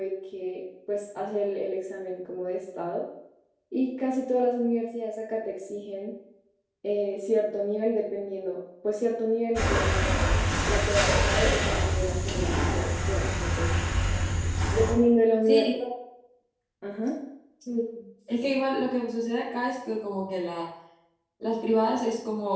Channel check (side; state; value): both; identical; correlation 1.00